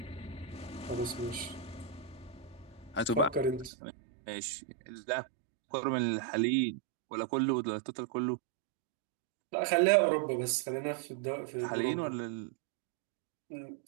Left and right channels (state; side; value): drops out; left; at 3.7 s